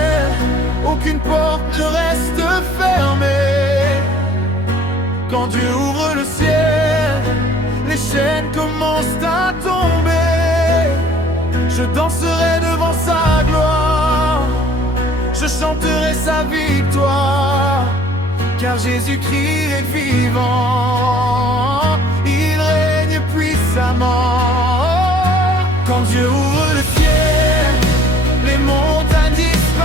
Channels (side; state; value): both; normal; correlation 0.55